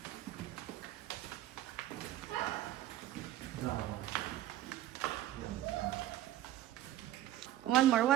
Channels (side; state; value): left; quieter; 13.6 dB